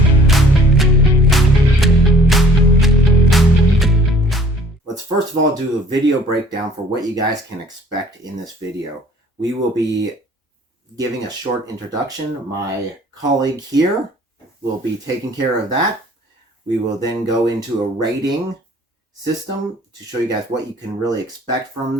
Let's first of all do a video breakdown for what you guys can expect in this video. We will be giving a short introduction. My colleague here will be taking care of that. We will then go into a rating system to show you guys what you can really expect from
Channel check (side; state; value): both; normal; correlation 0.54